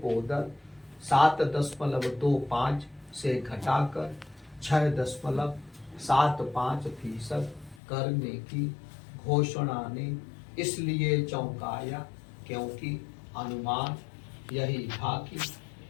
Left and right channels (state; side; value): drops out; right; at 7.8 s